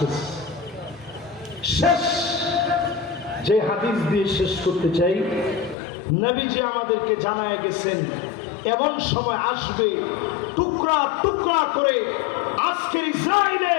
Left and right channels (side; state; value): right; drops out; at 5.8 s